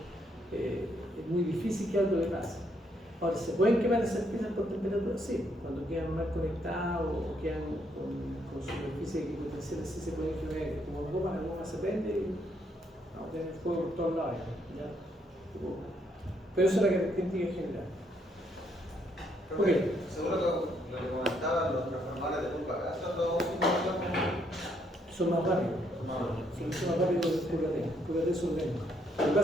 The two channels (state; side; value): normal; both; correlation 0.72